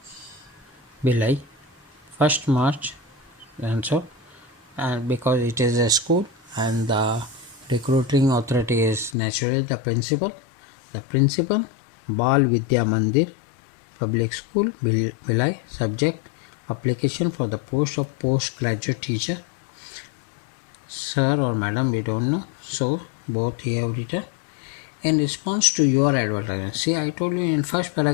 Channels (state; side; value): drops out; right; at 9.2 s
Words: Bhilai, 1st March, and so, and because it is a school and the recruiting authority is naturally the principal. The principal, Bal Vidya Mandir Public School, Bhilai. Subject, application for the post of postgraduate teacher. Sir or madam, we don't know, so both here have written. In response to your advertisement, see, I told you in first